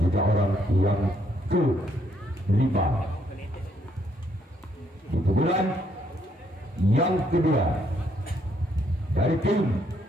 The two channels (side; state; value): both; normal; correlation 0.72